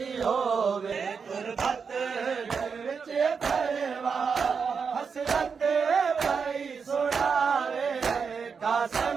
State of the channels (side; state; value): left; quieter; 5.8 dB